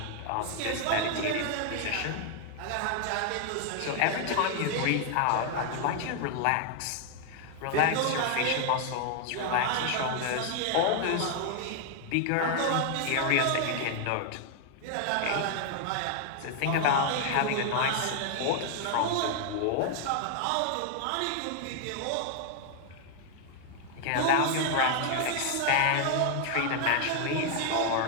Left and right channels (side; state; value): both; different; correlation 0.00